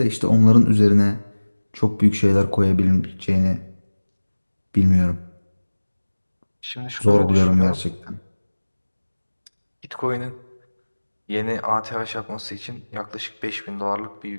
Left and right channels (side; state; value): both; inverted; correlation -1.00